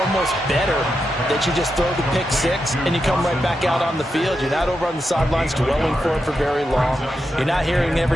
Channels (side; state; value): both; normal; correlation 0.87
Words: better that you just throw the pick 6 and you come right back out on the field. You're not over on the sidelines dwelling for it for very long. You're not hearing